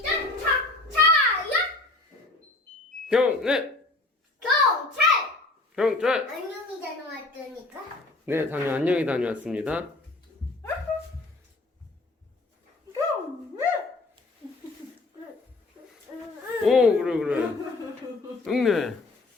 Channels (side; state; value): right; quieter; 3.0 dB